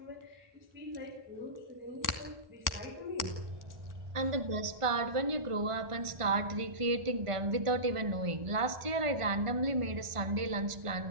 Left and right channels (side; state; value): left; late; 1.5 ms